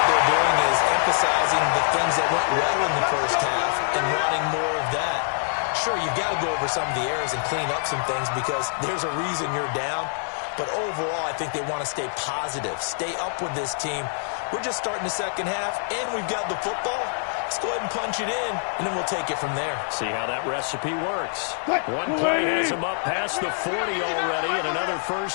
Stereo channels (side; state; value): right; silent; digital silence